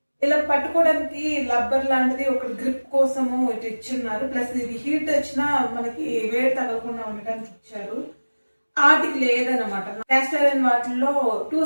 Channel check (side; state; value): both; inverted; correlation -1.00